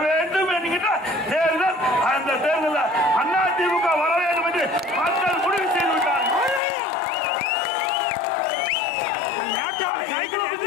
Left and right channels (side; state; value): right; drops out; at 6.6 s